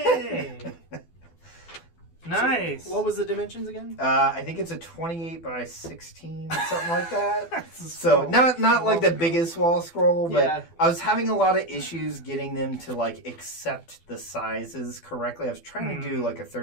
Nice! What was the dimensions again? I think it's a 28 by 16, something like that. That's a So small- not like the biggest wall scroll, but Yeah. I was having a lot of issues getting them to like accept the sizes correctly. I was trying to do like a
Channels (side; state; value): right; late; 12 ms